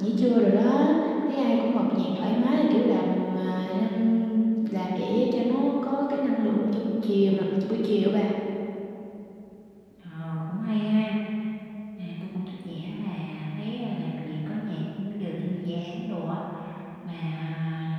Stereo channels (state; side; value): identical; both; correlation 1.00